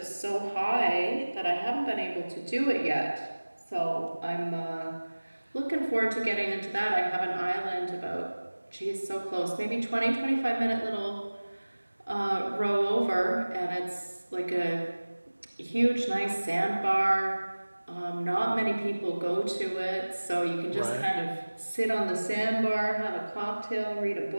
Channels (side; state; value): both; inverted; correlation -1.00